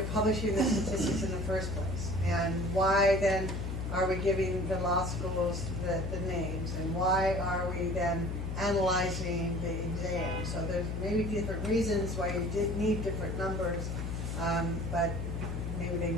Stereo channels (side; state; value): left; noise; hum, 3 dB below the sound